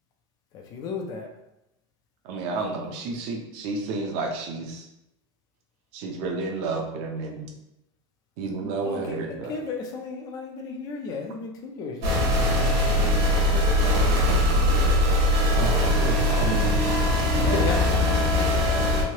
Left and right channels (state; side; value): normal; both; correlation 0.22